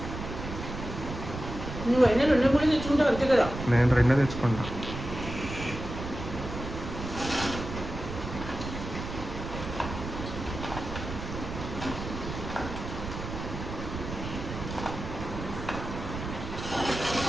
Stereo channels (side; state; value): right; noise; rumble, 7 dB below the sound